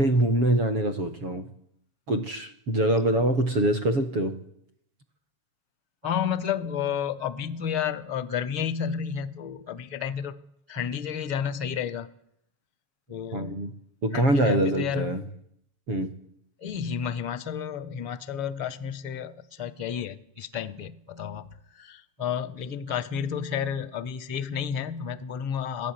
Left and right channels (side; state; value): left; late; 7.2 ms